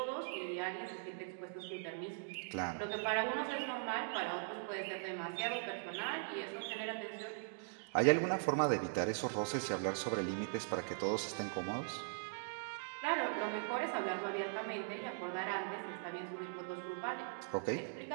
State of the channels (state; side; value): silent; left; digital silence